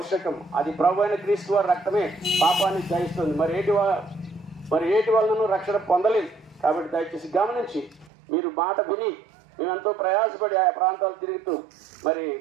అది ప్రభువైన క్రీస్తు వారి రక్తమే పాపాన్ని జయిస్తుంది. మరి ఏటి వలన రక్షణ పొందలేదు. కాబట్టి దయచేసి గమనించి మీరు మాట విని మేమెంతో ప్రయాసపడి ఆయా ప్రాంతాలు తిరుగుతూ మరి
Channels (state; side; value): drops out; left; at 8.1 s